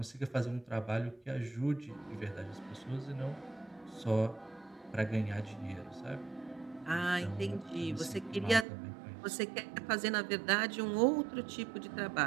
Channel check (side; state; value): left; drops out; at 8.7 s